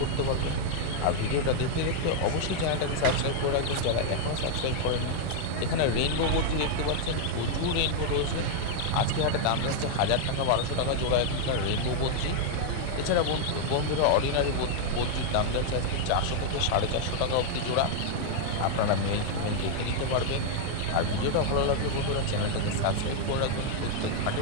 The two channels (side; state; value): both; different; correlation 0.00